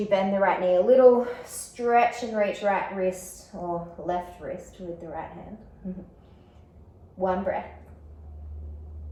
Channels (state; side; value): identical; both; correlation 1.00